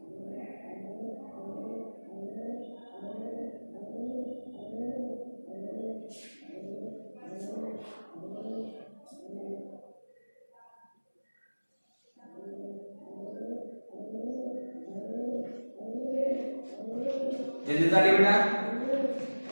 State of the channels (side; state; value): both; inverted; correlation -1.00